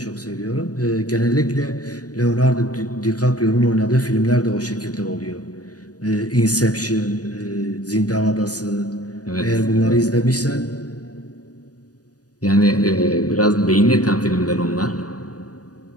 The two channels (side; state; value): right; late; 0.68 ms